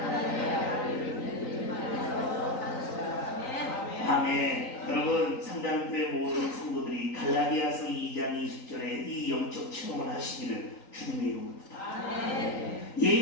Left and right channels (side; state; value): right; late; 3.9 ms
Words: 아멘. 여러분 상담교회 모든 성도들이 갈라디아서 2장 20절에 이 영적 체험을 하시기를 주님의 이름으로 부탁합니다.